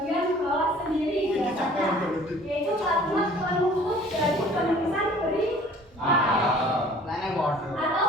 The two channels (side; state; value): both; normal; correlation 0.51